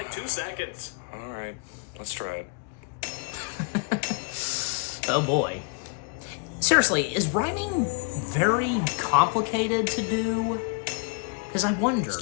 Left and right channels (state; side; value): quieter; right; 36.2 dB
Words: 2 seconds. All right, let's try it. Oh boy. Seriously, is rhyming very complicated to do? Because I wonder,